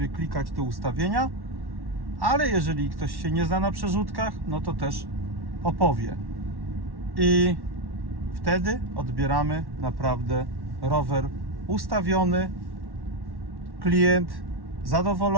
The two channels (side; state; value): left; late; 1.1 ms